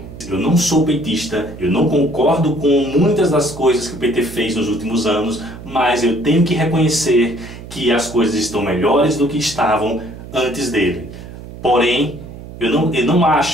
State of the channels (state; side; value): noise; right; hum, 14 dB below the sound